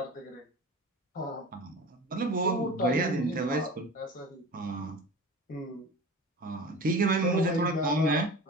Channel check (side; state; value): both; normal; correlation 0.35